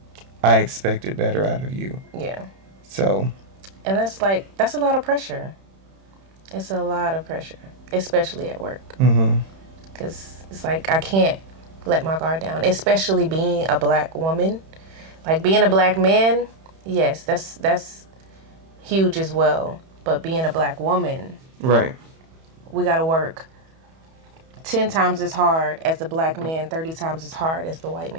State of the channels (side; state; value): left; late; 31 ms